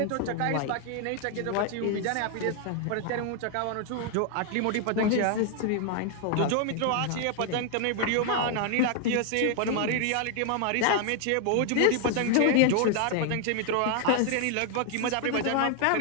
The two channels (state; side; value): different; both; correlation 0.00